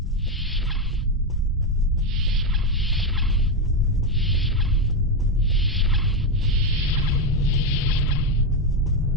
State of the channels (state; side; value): normal; both; correlation 0.08